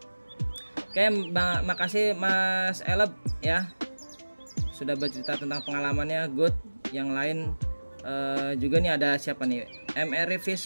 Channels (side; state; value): both; inverted; correlation -1.00